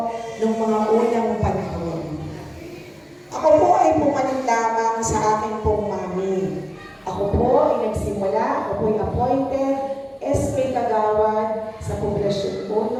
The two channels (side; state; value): both; identical; correlation 1.00